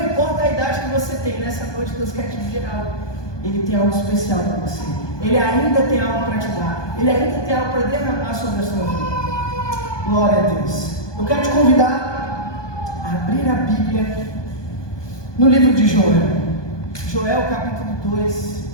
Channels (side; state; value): right; late; 1.2 ms